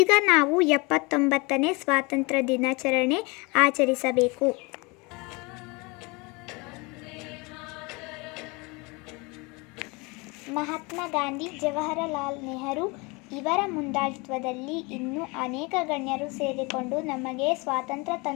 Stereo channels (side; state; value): right; quieter; 27.2 dB